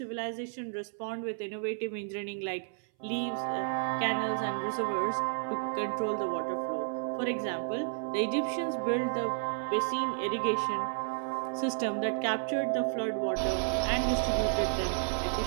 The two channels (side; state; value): left; silent; 57 dB below the other